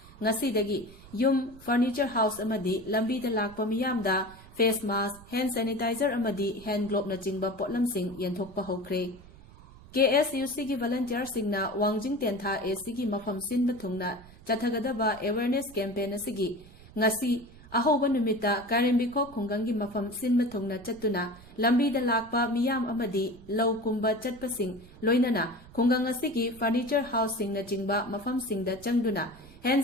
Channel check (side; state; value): right; noise; rumble, 21 dB below the sound